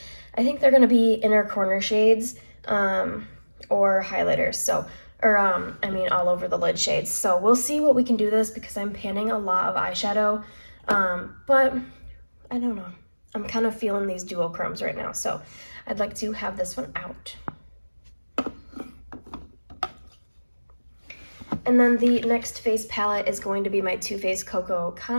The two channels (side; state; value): both; inverted; correlation -1.00